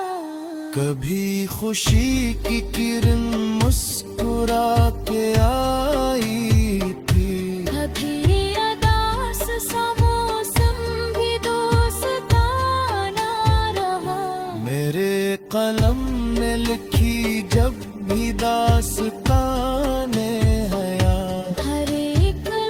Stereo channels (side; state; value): both; identical; correlation 1.00